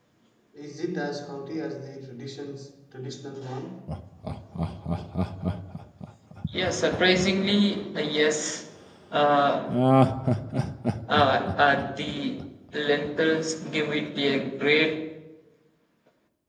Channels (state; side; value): identical; both; correlation 1.00